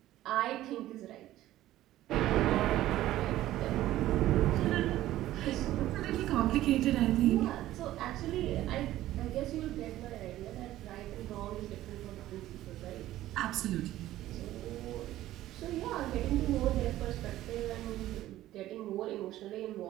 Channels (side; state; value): left; quieter; 14.6 dB